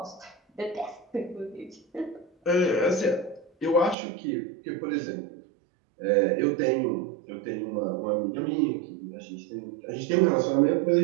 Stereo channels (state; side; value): drops out; left; at 4.0 s